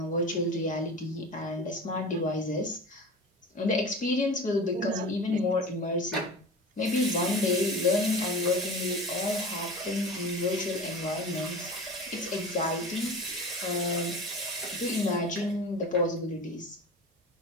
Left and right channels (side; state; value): both; normal; correlation 0.34